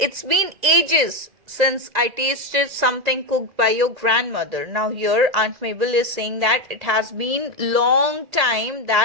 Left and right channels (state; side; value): late; left; 1.9 ms